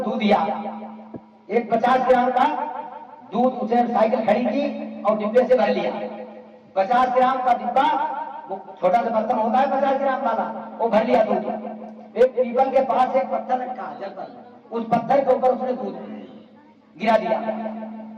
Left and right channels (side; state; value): both; identical; correlation 1.00